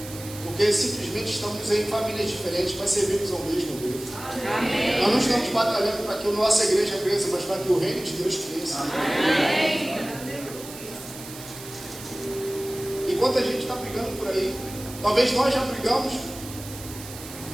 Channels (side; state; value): right; noise; hiss, 14 dB below the sound